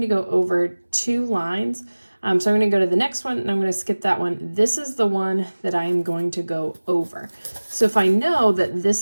to go over 2 lines. So I'm going to go to the next one and I'm going to skip that one. This is the one that I am going to go over. So if I know that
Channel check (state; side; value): inverted; both; correlation -1.00